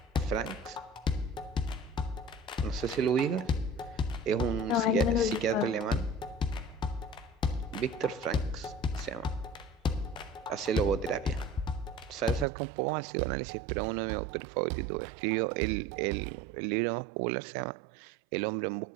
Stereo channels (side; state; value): left; drops out; at 12.5 s